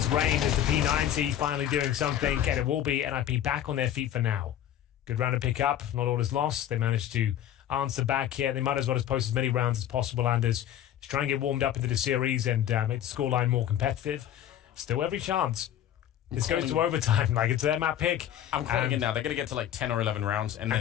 Rain as the P90 finally doing something, and it will be NIP back on their feet for now. Good round to pick up. Not all is lost. They managed to answer back here. They might as well just post as many rounds as possible, Anders, to try and get warmed up into the series and make the scoreline more competitive. Still every chance. This goes to overtime. Like, it's their map pick. I'm calling it now. They're going to get to like 10 or 11 rounds, and then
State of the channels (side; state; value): right; quieter; 11.1 dB